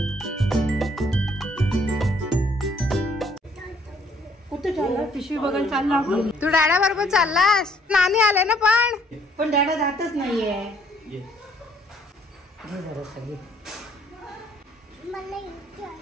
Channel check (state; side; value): normal; both; correlation 0.64